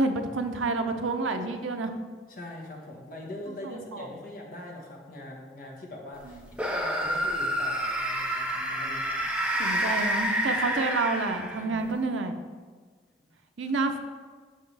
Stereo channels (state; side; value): normal; both; correlation 0.37